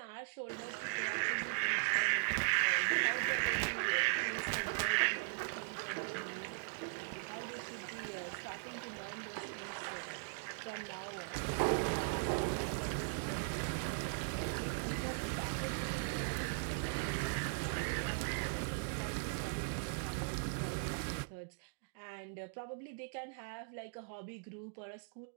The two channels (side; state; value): left; silent; digital silence